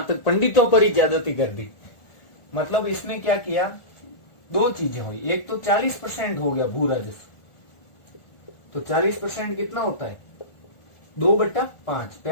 तक पंडितों पर ही ज्यादती कर दी। मतलब इसने क्या किया, दो चीजें हुई, एक तो 40% हो गया भू राजस्व, तो 40% कितना होता है, 2/5।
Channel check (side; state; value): right; late; 1.4 ms